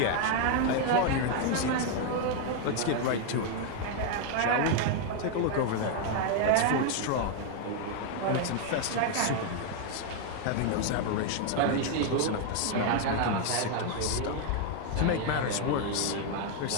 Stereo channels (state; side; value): different; both; correlation 0.01